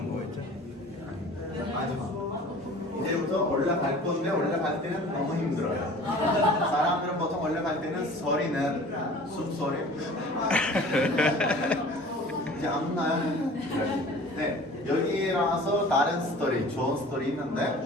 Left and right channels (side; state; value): both; normal; correlation 0.44